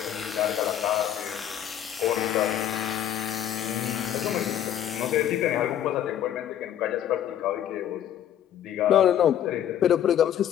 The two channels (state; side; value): quieter; right; 10.6 dB